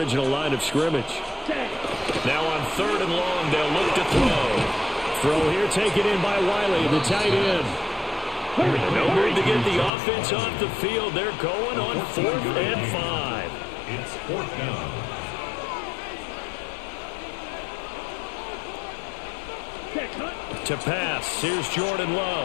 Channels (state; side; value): drops out; right; at 9.9 s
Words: line of scrimmage. Now on 3rd and long, they'll look to throw. Throw here taken in by Wiley, the tight end. No move to get the offense off the field. They're going on 4th and 5. It's 4th down. To pass, here's Jordan